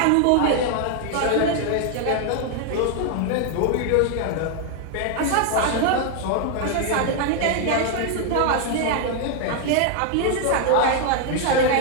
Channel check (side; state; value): both; different; correlation 0.00